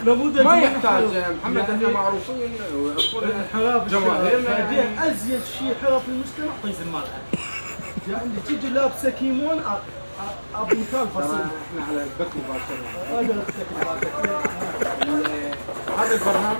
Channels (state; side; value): inverted; both; correlation -1.00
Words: نموذج ما يحتاج محمد، احنا معروفين ويعرفون جماهيرنا. بعدين ازيد شيء حرف المجتمع طيز المال، يعني تيجي لابسه كيمون ابو مثال فصيل. احنا على البث مباشره. هذا